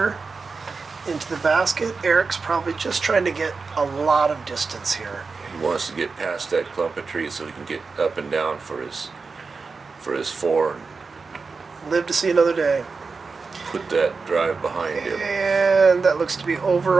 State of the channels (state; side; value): quieter; left; 4.5 dB